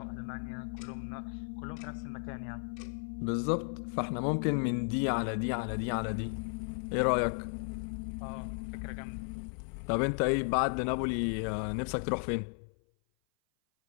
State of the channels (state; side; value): silent; right; 55 dB below the other